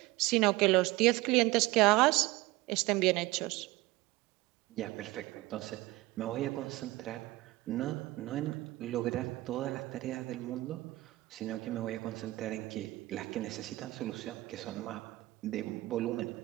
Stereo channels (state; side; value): quieter; left; 19.5 dB